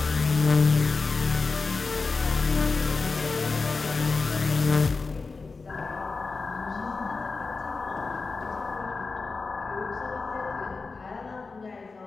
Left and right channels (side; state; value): right; quieter; 4.2 dB